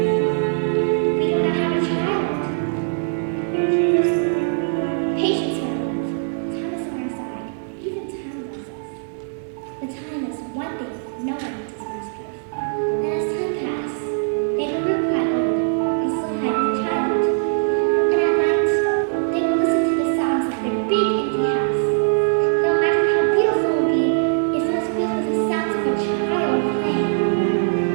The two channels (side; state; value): left; silent; digital silence